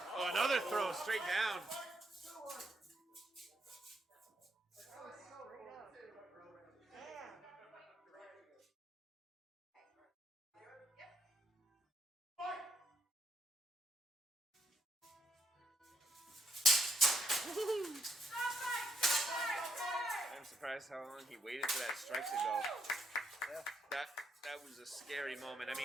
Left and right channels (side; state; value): both; normal; correlation 0.79